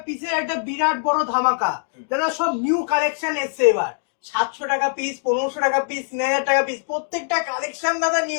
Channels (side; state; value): right; silent; digital silence